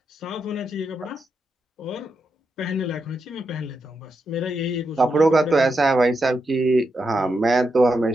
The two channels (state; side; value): normal; both; correlation 0.85